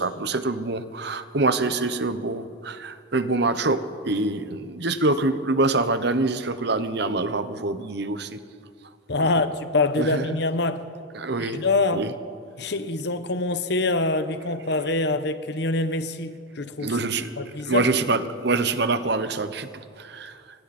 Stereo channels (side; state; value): both; normal; correlation 0.04